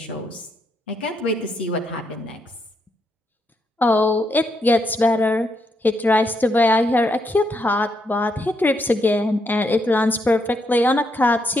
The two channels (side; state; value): both; normal; correlation 0.78